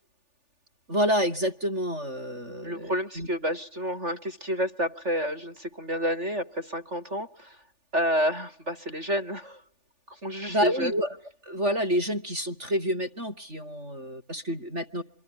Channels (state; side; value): late; left; 3.4 ms